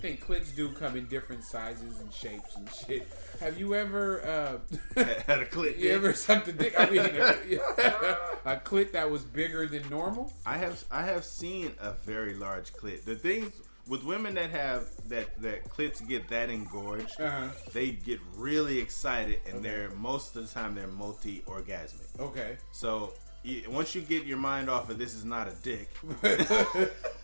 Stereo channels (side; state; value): both; inverted; correlation -1.00